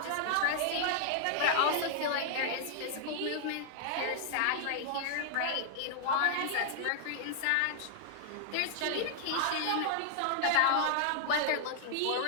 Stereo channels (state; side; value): different; both; correlation -0.01